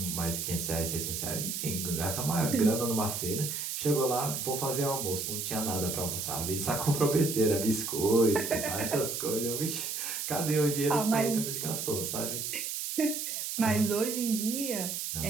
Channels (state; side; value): noise; right; hiss, 3 dB below the sound